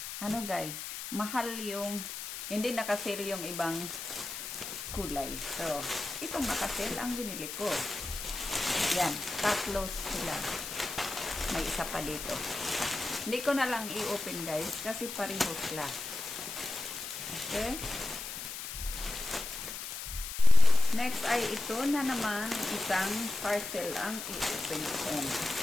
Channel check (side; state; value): left; noise; hiss, 7 dB below the sound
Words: Ano guys? Mahal yung, hindi nakasale yung ibang kulay. So, itong nakasale ang binili ko. Yan, 3 sila. May isa pa dito. Hindi ko na lang i-open guys, kasi pareho sila. Okay? Next ay ito na naman, isang parcel ang i-open ko.